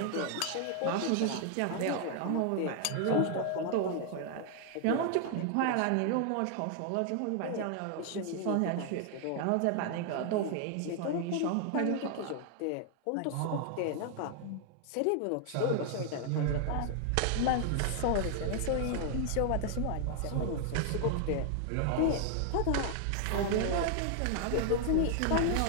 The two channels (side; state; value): both; different; correlation 0.00